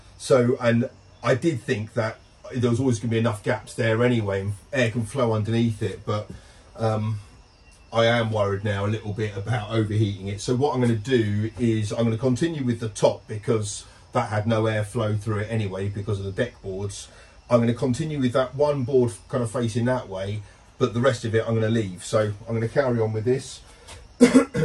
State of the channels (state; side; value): identical; both; correlation 1.00